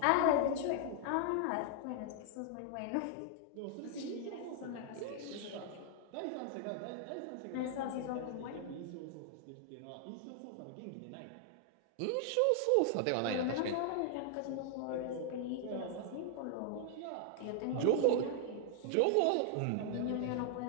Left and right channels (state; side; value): different; both; correlation 0.00